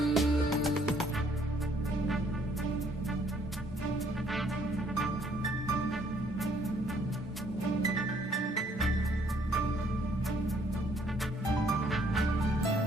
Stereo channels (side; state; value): both; normal; correlation 0.64